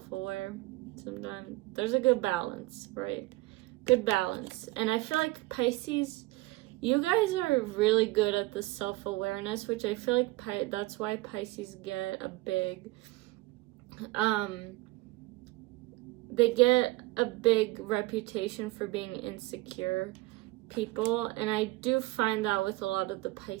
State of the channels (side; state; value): left; quieter; 20.4 dB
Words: sometimes. There's a good balance, right? Good balance. And I feel like Pisces, you guys are really good at the self-awareness, which I feel like that's why Pisces get a big they get a big reputation for being insecure people, and I do find that with a lot of the